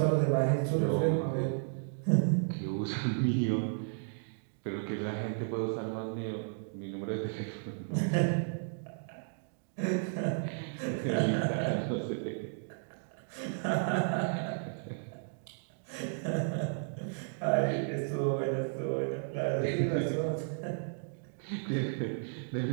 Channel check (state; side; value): silent; left; digital silence